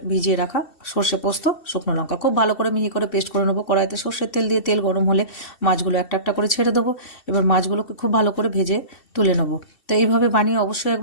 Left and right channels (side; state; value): right; late; 2.7 ms